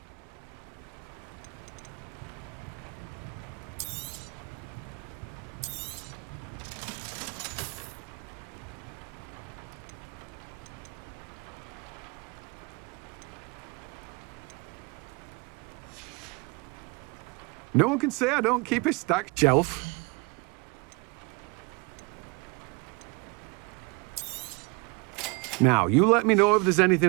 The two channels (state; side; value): quieter; left; 29.9 dB